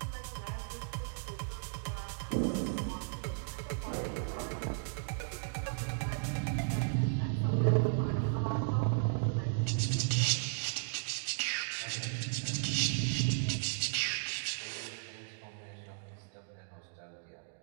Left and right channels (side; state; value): left; silent; digital silence